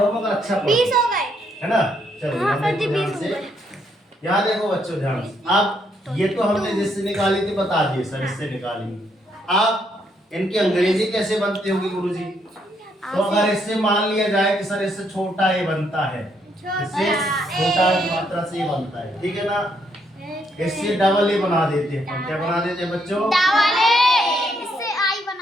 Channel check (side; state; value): both; normal; correlation 0.74